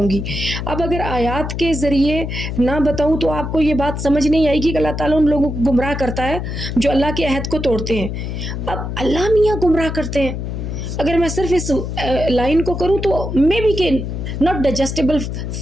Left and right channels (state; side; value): noise; left; hum, 5 dB below the sound